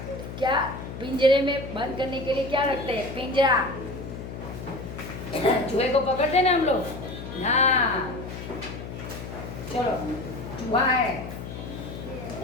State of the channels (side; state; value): left; noise; hum, 9 dB below the sound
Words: क्या पिंजरे में बंद करने के लिए क्या रखते हैं? पिंजरा। चूहे को पकड़ते हैं ना हम लोग। हाँ, चलो, चूहा है,